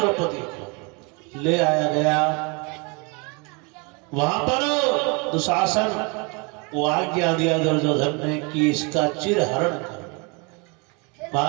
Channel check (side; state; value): left; quieter; 31.4 dB